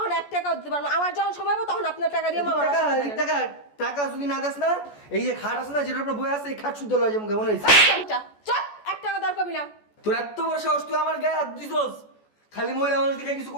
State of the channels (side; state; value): right; late; 14 ms